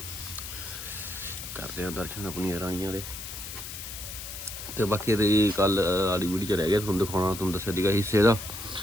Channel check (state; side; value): noise; left; hiss, 9 dB below the sound